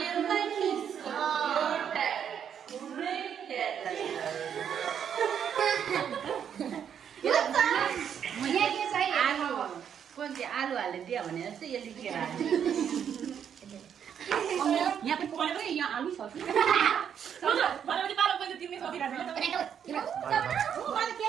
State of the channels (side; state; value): left; quieter; 8.4 dB